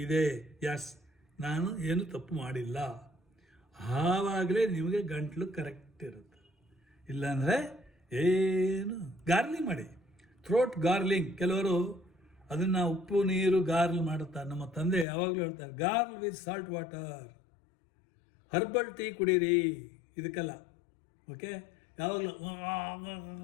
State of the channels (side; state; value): right; drops out; at 15.1 s